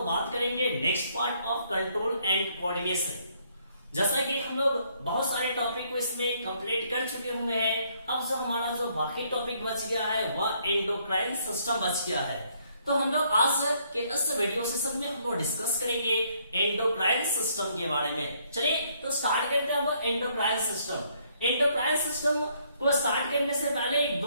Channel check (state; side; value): inverted; both; correlation -0.68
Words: बात करेंगे next part of control and coordination. जैसा कि हम लोग बहुत सारे टॉपिक को इसमें कंप्लीट कर चुके हुए हैं, अब जो हमारा जो बाकी टॉपिक बच गया है वह एंडोक्राइन सिस्टम बच गया है। तो हम लोग आज के इस वीडियो सेशन में हम लोग डिस्कस करेंगे एंडोक्राइन सिस्टम के बारे में। चलिए तो स्टार्ट करते हैं अब एंडोक्राइन सिस्टम। एंडोक्राइन सिस्टम को स्टार्ट करने से पहले एक